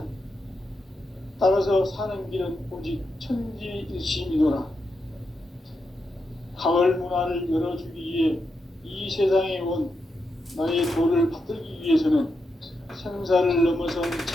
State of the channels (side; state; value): both; normal; correlation 0.85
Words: 따라서 사는 길은 오직 천지일심이노라. 가을 문화를 열어주기 위해 이 세상에 온 나의 도를 받들기 위해서는 생사를 넘어선